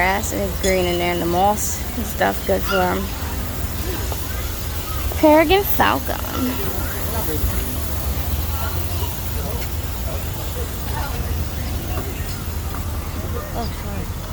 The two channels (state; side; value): identical; both; correlation 1.00